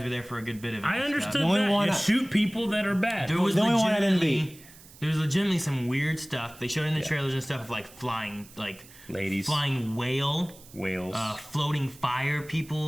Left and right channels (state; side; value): noise; right; hiss, 22 dB below the sound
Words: were there for a good bit of it. I and understood stuff. The only that one you I- shoot people that are bad. There was The only one I didn't legitimately- There was legitimately some weird stuff. They showed in the trailers and stuff of like flying, like Ladies. flying whales, floating fire